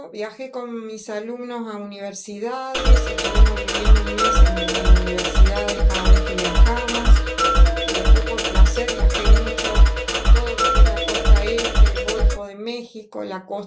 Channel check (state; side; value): identical; both; correlation 1.00